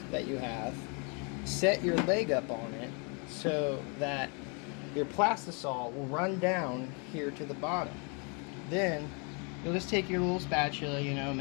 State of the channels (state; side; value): quieter; right; 35.2 dB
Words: that you have, set your leg up on it so that your Plastisol will run down here to the bottom. Then you'll just take your little spatula, you know,